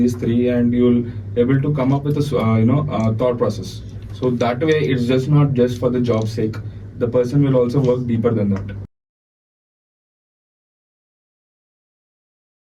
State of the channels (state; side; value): identical; both; correlation 1.00